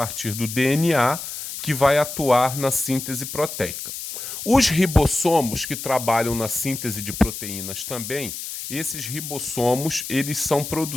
do DNA que vai atuar na síntese proteica. Os ribossomos que trabalham na síntese de proteínas também, esses ribossomos, eles são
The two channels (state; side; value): noise; left; hiss, 8 dB below the sound